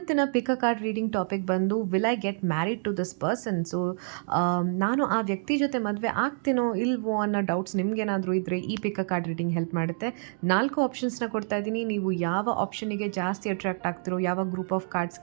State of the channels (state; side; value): silent; left; digital silence